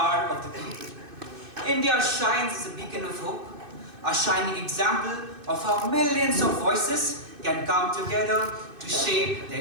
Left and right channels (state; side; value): late; left; 2.6 ms